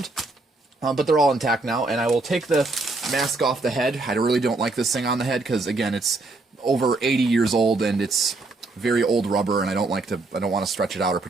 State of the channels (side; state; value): left; quieter; 3.3 dB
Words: But they're all intact now, and I will take the mask off the head. I really don't like this thing on the head because, again, it's over 80 years old and it's very old rubber, and I don't want to stretch it out or